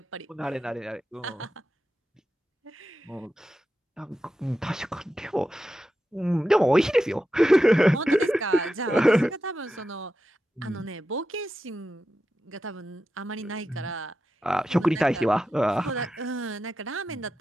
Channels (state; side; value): normal; both; correlation 0.90